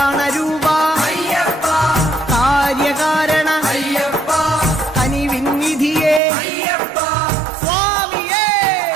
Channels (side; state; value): left; drops out; at 6.2 s